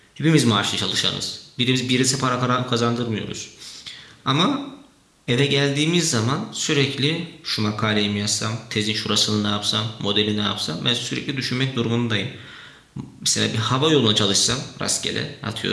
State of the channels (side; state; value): both; identical; correlation 1.00